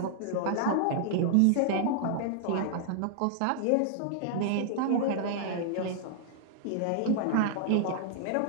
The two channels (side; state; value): both; different; correlation -0.01